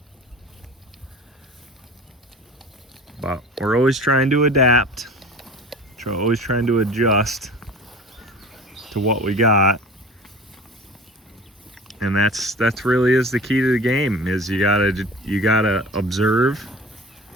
But we're always trying to adapt. Always trying to adjust to what we got. And that's really is the key to the game, is you gotta observe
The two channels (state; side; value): normal; both; correlation 0.40